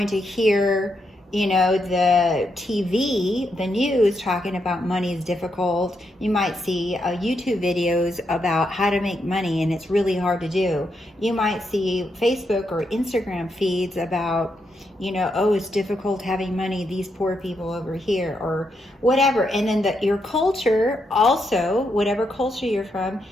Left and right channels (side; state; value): both; normal; correlation 0.81